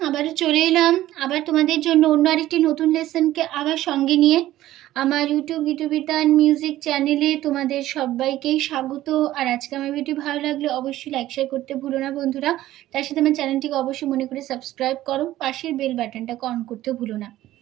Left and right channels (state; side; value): quieter; left; 14.7 dB